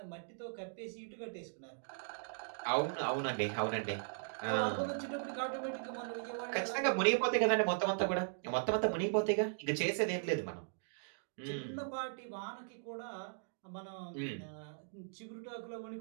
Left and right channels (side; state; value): left; silent; digital silence